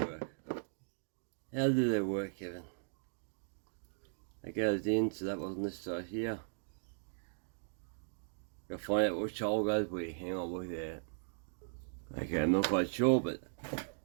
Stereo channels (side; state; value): left; silent; digital silence